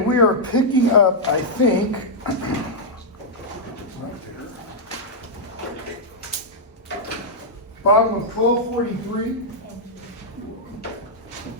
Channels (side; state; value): both; normal; correlation -0.06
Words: are picking up, I think, right there. Bottom of 1243.